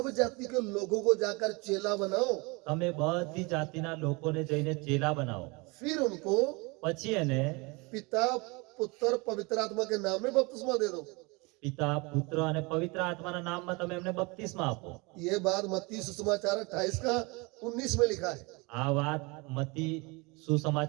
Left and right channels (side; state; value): left; quieter; 27.3 dB